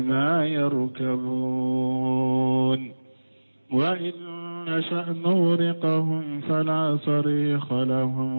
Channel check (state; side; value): inverted; both; correlation -1.00